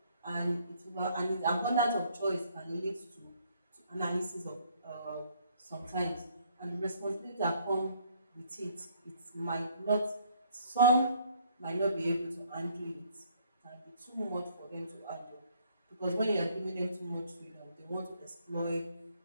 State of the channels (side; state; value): both; inverted; correlation -0.63